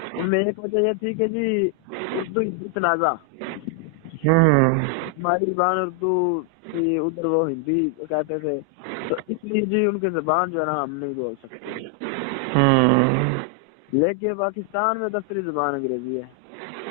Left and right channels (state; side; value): normal; both; correlation 0.00